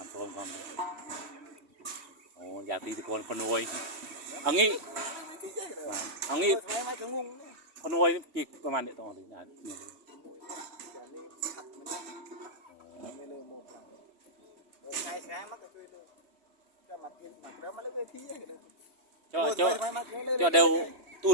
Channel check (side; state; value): left; late; 3.1 ms